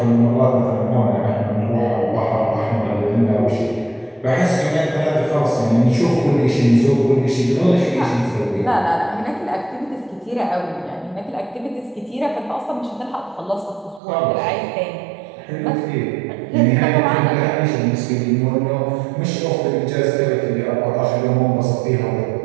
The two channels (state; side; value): drops out; left; at 14.0 s